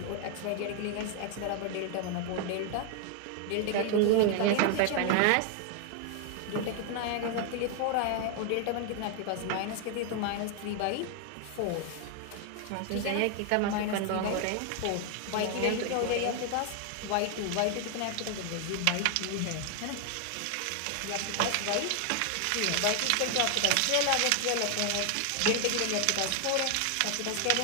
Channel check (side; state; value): both; different; correlation 0.00